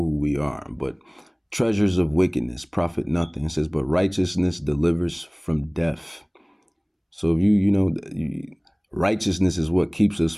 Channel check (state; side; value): identical; both; correlation 1.00